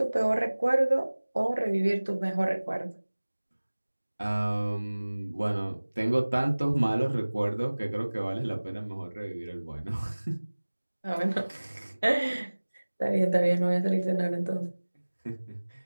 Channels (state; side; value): inverted; both; correlation -1.00